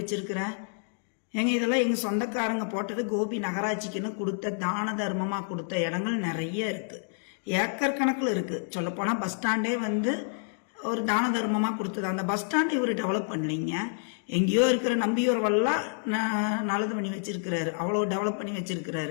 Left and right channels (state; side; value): silent; right; digital silence